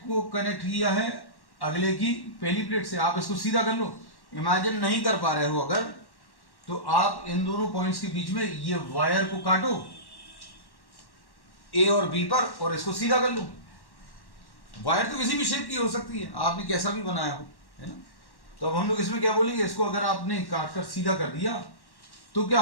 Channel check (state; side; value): late; right; 1.1 ms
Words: को कनेक्ट किया है अगले की पहली प्लेट से। आप इसको सीधा कर लो, इमेजिन नहीं कर पा रहे हो अगर, तो आप इन दोनों पॉइंट्स के बीच में ये वायर को काटो ए और बी पर, और इसको सीधा कर लो। वायर तो किसी भी शेप की हो सकती है, आपने कैसा भी बनाया हो, है ना। तो अब हम लोग इसमें क्या बोलेंगे, इसको अगर आपने काट कर सीधा कर दिया तो क्या